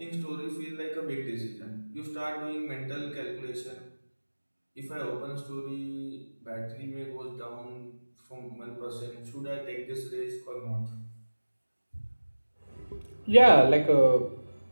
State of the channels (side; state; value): both; inverted; correlation -1.00